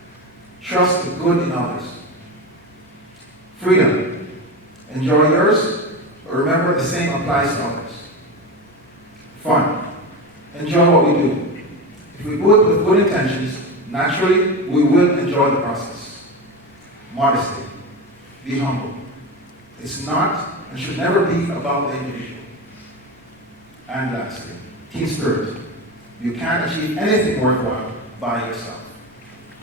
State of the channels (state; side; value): normal; both; correlation 0.21